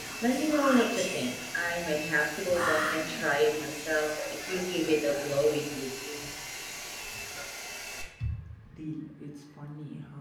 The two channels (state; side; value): identical; both; correlation 1.00